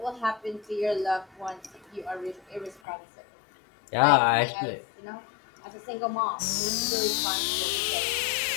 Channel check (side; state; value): right; drops out; at 2.8 s